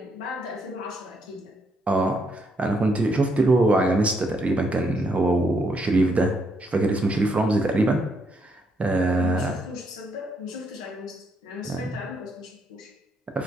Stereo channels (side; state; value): both; normal; correlation 0.75